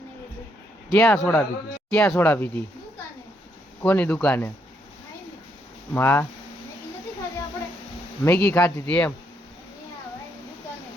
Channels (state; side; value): normal; both; correlation 0.75